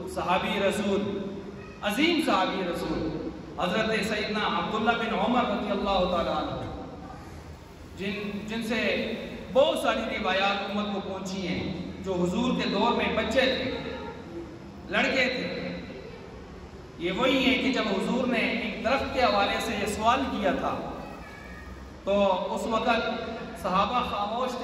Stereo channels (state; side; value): identical; both; correlation 1.00